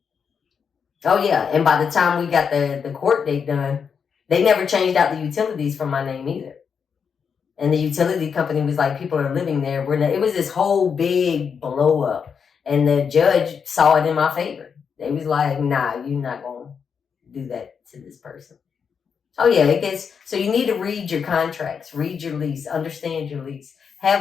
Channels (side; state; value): right; quieter; 6.5 dB